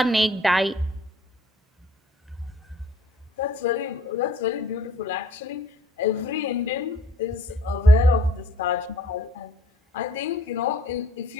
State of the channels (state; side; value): normal; both; correlation 0.57